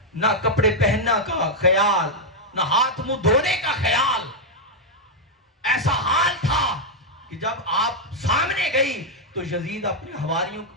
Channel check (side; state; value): both; normal; correlation -0.02